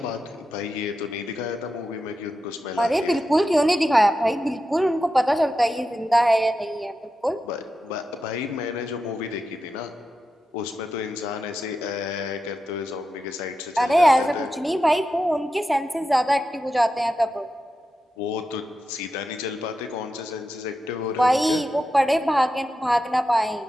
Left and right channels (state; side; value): normal; both; correlation 0.89